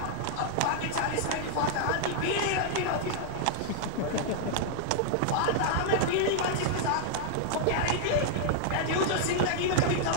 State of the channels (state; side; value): different; both; correlation -0.01